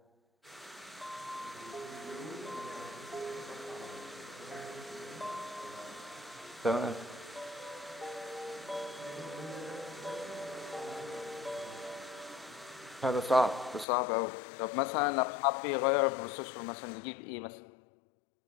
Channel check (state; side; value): drops out; right; at 13.9 s